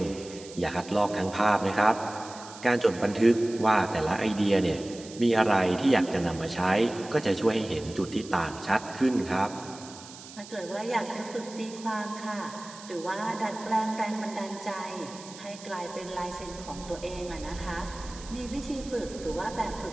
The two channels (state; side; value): noise; right; hiss, 16 dB below the sound